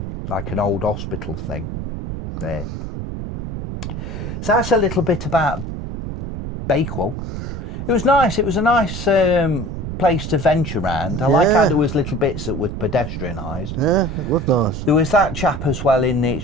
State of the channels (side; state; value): right; noise; rumble, 6 dB below the sound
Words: like an old hospital thing, there. So that's a little bit about Bakewell. It was nice. It was a nice place to venture around. I like how there was little bits that were pedestrianised. Yeah, it was nice. There was that chap as well in there. It's